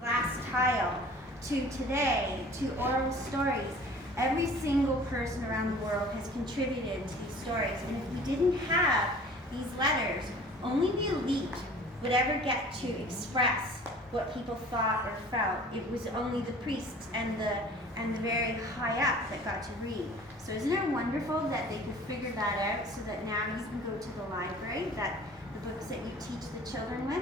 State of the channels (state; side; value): normal; both; correlation 0.47